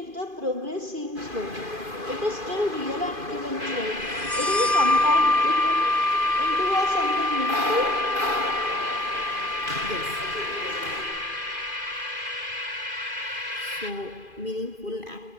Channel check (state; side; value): late; left; 2.5 ms